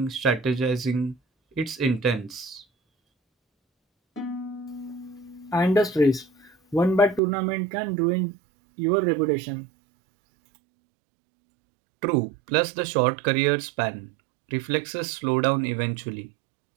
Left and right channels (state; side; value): drops out; left; at 7.2 s